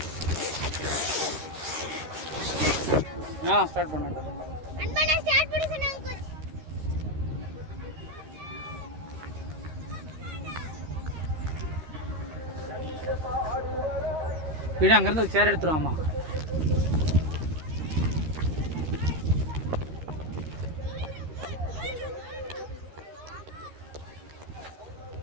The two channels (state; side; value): late; left; 13 ms